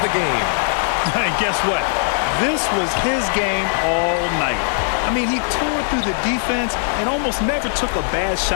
the Game. And guess what? This was his game all night. I mean, he tore through the defense and almost never took a bad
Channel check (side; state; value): right; silent; 66 dB below the other